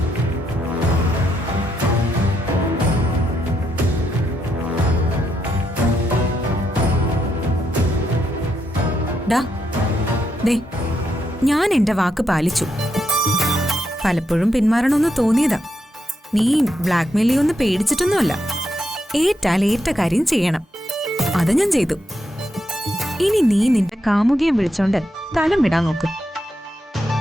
ഞാൻ എന്റെ വാക്ക് പാലിച്ചു. പലപ്പോഴും പിന്മാറണമെന്ന് തോന്നിയതാ. നീ ബ്ലാക്ക് മെയിൽ ഒന്ന് പേടിച്ചിട്ടൊന്നുമല്ല. ഏറ്റാൽ ഏറ്റ കാര്യം ചെയ്യണം. അത് ഞാൻ ചെയ്തു. ഇനി നീ നിന്റെ കാമുകിയെ വിളിച്ചോണ്ട് സ്ഥലം വിടാൻ നോക്ക്.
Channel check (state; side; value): normal; both; correlation 0.81